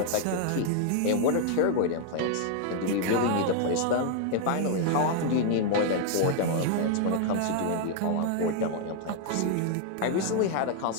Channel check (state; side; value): different; both; correlation 0.00